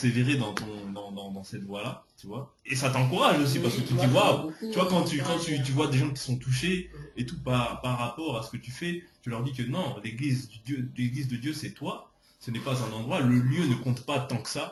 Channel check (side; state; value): both; identical; correlation 1.00